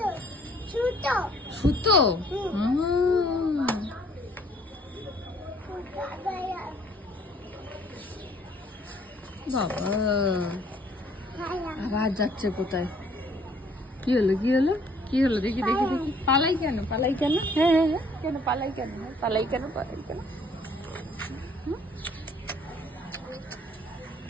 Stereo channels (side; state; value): both; normal; correlation 0.60